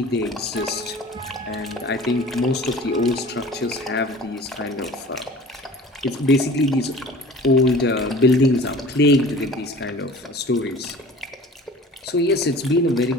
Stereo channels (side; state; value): both; normal; correlation 0.43